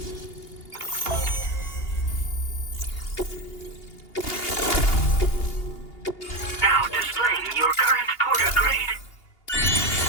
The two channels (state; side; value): late; right; 2.8 ms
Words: Now displaying your current porter grade.